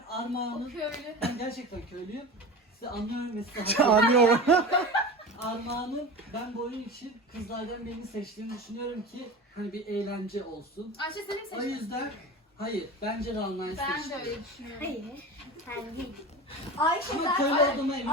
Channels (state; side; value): normal; both; correlation 0.31